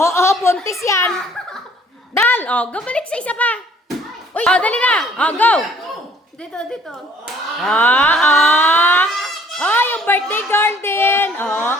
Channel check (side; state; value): both; normal; correlation 0.57